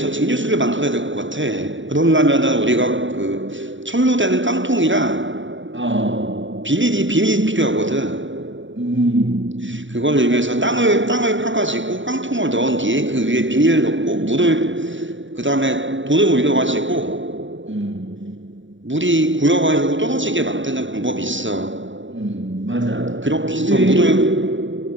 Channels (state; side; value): late; left; 0.55 ms